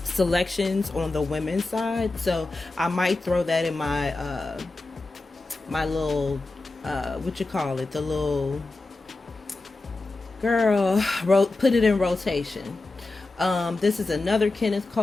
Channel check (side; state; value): right; quieter; 3.2 dB